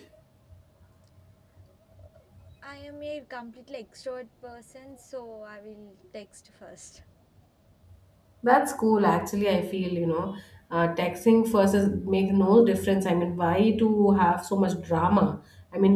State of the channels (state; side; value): identical; both; correlation 1.00